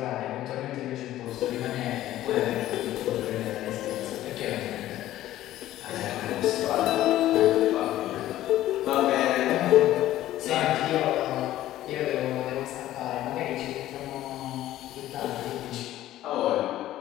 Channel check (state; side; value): quieter; right; 14.0 dB